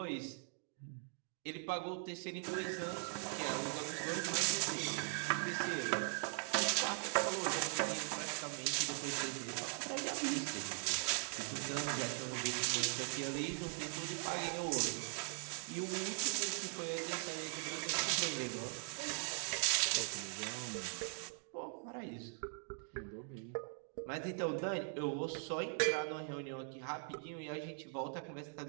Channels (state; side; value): silent; left; 51 dB below the other